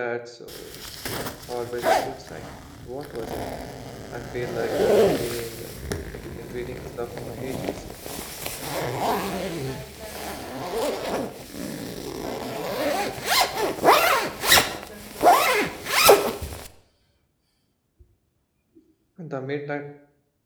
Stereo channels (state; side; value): identical; both; correlation 1.00